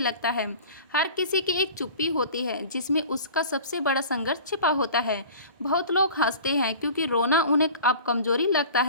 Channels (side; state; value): both; inverted; correlation -0.40